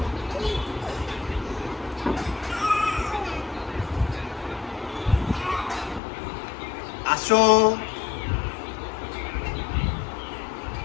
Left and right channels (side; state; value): right; drops out; at 6.0 s